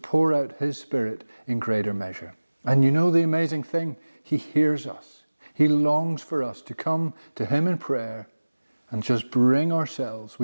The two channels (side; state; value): both; inverted; correlation -1.00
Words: out His Spirit in greater measure. And you know the amazing thing? He hears us. He longs for us to come to Him in prayer and just bring ourselves.